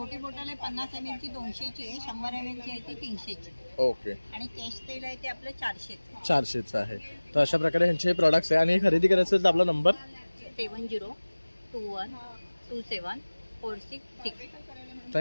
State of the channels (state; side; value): inverted; both; correlation -1.00